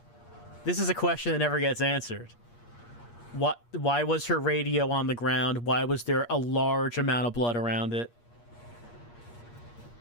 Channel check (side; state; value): right; late; 8.5 ms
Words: This is a question that never gets answered. Why was her radio on the ground? Why was there a large amount of blood around it?